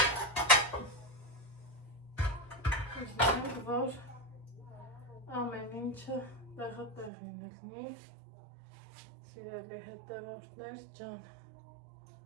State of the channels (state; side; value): drops out; left; at 7.1 s